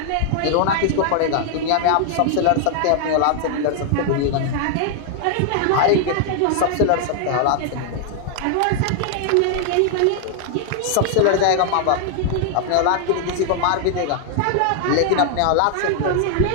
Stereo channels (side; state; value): both; different; correlation 0.00